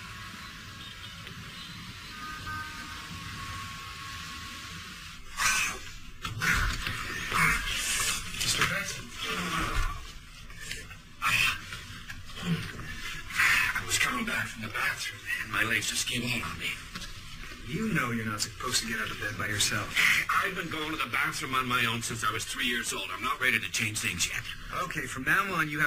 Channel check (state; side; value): identical; both; correlation 1.00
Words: Mr. Benson. I was coming back from the bathroom, and my legs just gave out on me. You know you're not supposed to get out of bed by yourself. I've been going to the bathroom on my own since I was 3 years old. I'm not ready to change things yet. Okay, from now on, you